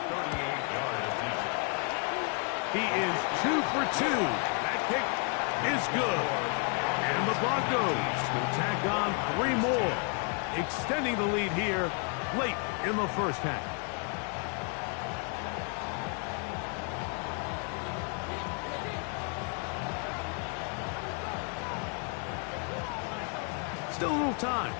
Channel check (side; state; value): right; quieter; 38.7 dB